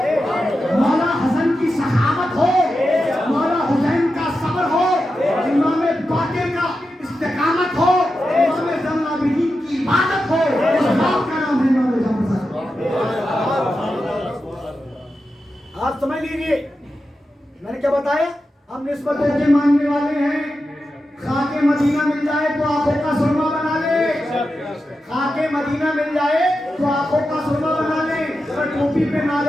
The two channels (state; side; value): normal; both; correlation 0.90